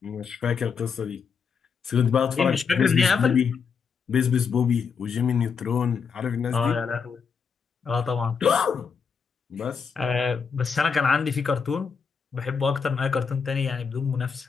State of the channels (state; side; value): quieter; right; 6.0 dB